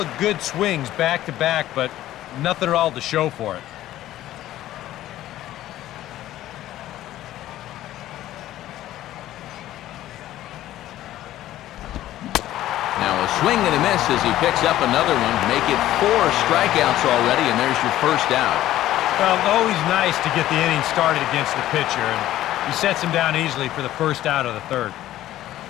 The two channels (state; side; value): quieter; right; 14.0 dB